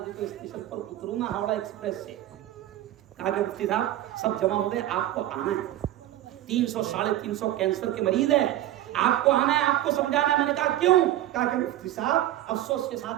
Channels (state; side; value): quieter; left; 13.7 dB